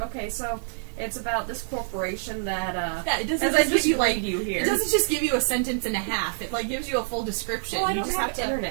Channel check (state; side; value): silent; left; digital silence